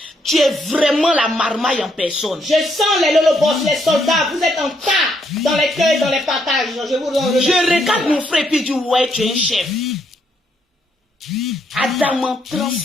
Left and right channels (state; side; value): normal; both; correlation 0.74